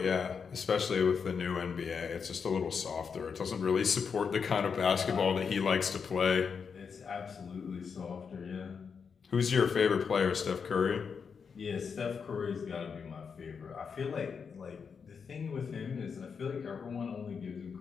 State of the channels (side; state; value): right; quieter; 6.1 dB